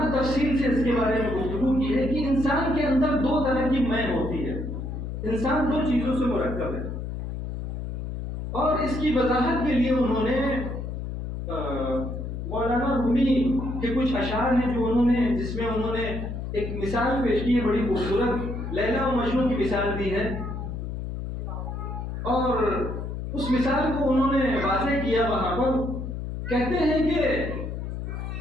تفصیل سے اس کے بارے میں گفتگو کی ہے کہ انسان کے اندر دو طرح کی میں ہوتی ہے، انسان دو چیزوں سے مرکب ہے، اور اس کی وضاحت کے لیے انہوں نے مولانا رومی کے کچھ اشعار ہیں جو جس میں انہوں نے ایک مثال پیش کی ہے بڑی خوبصورت، لیلا و مجنون کی مثال دی ہے، اور اس مثال کو انہوں نے واضح کیا وہاں پر۔ کہتے ہیں کہ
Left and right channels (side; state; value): left; noise; hum, 5 dB below the sound